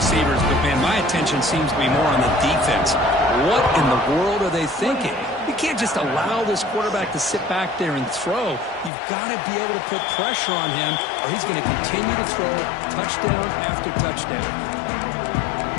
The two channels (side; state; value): right; drops out; at 8.9 s